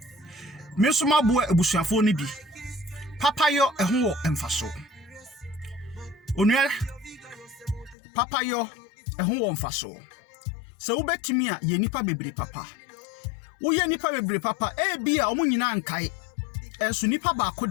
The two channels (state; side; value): drops out; right; at 8.0 s